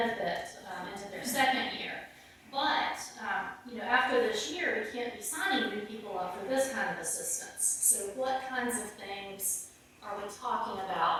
into their second year. But after this year, we can't be signing new people up for this kind of assistance. So what kinds of things are we talking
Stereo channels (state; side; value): identical; both; correlation 1.00